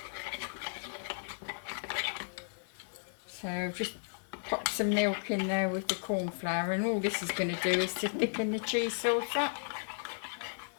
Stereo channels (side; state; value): right; silent; 55 dB below the other